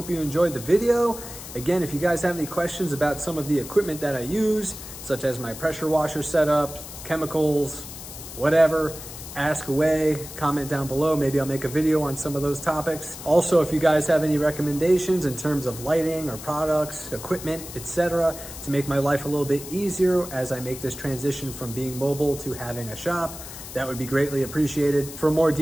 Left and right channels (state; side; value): noise; left; hiss, 12 dB below the sound